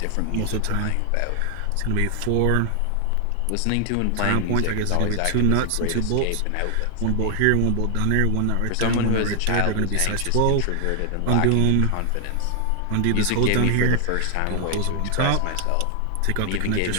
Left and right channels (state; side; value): different; both; correlation 0.00